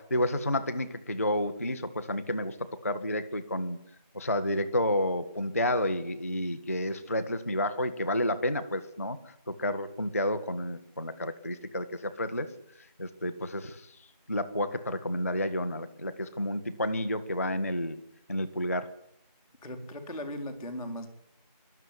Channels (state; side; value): inverted; both; correlation -0.64